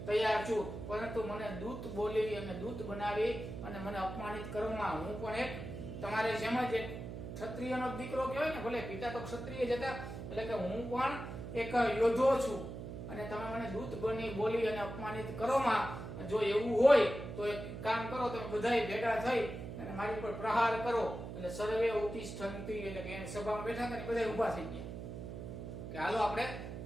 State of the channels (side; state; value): right; noise; hum, 8 dB below the sound